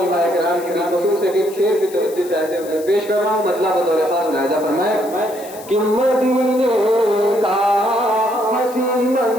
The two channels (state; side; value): noise; left; hiss, 18 dB below the sound